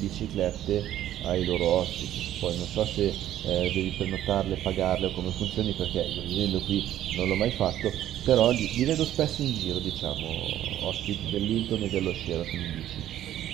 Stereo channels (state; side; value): quieter; left; 12.3 dB